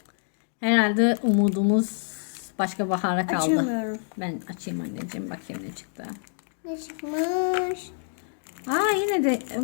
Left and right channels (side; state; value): right; silent; digital silence